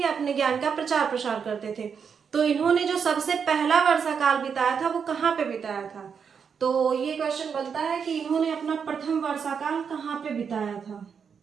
अपने ज्ञान का प्रचार प्रसार करते थे। तो इन्होंने जो सबसे पहला वर्षा काल बिताया था, वो कहाँ पे बिताया था, तो ये क्वेश्चन बनता है कि इन्होंने अपना प्रथम वर्षा काल कहाँ पे बिताया था।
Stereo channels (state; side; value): quieter; left; 6.6 dB